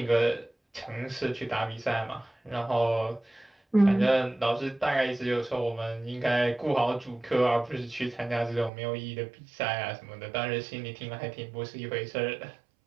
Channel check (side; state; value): left; drops out; at 8.7 s